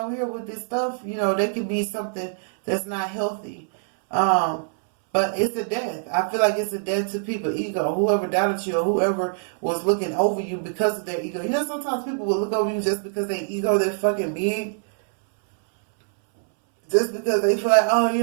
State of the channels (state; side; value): silent; left; 63 dB below the other